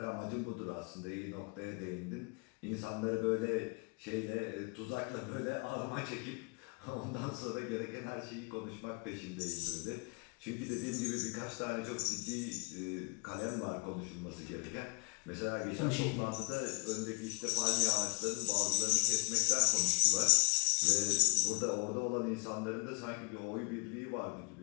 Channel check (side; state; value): right; quieter; 31.9 dB